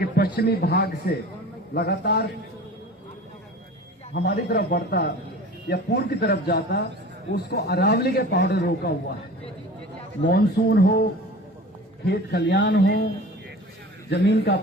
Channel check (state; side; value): normal; both; correlation 0.39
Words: पश्चिमी भाग से लगातार हमारी तरफ बढ़ता या पूर्व की तरफ जाता, उसको अरावली के पहाड़ों ने रोका हुआ है। मॉनसून हो, खेत खलियान हो, जमीन का